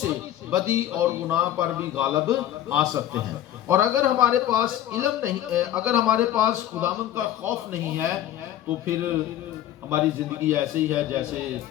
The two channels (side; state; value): right; quieter; 12.2 dB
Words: بدی اور گناہ پر بھی غالب آ سکتے ہیں۔ اور اگر ہمارے پاس علم نہیں ہے، اگر ہمارے پاس خداوند کا خوف نہیں ہے، تو پھر ہماری زندگی ایسے ہی ہے جیسے